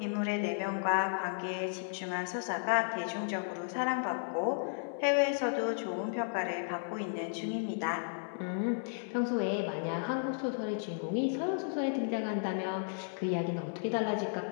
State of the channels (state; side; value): silent; right; 55 dB below the other